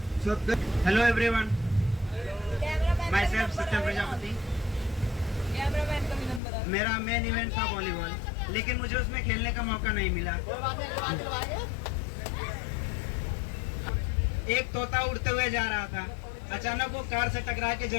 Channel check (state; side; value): drops out; right; at 6.4 s